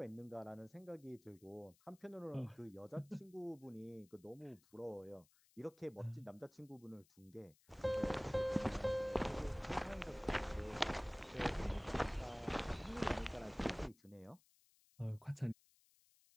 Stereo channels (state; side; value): noise; left; hiss, 29 dB below the sound